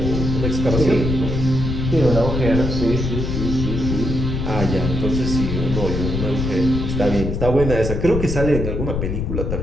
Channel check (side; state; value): left; noise; rumble, 2 dB below the sound